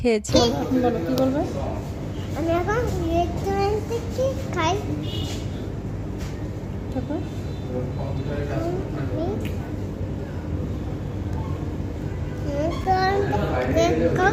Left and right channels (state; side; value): identical; both; correlation 1.00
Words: এখন বলো কি বলবে? আমি এখন রেস্টুরেন্ট থেকে খাই। তারপর